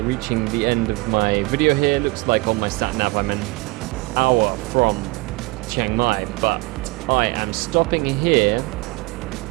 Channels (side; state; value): left; quieter; 23.8 dB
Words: reaching the end of my video here. Looks like on my sat nav I'm an hour from Chiang Mai, but I am stopping here.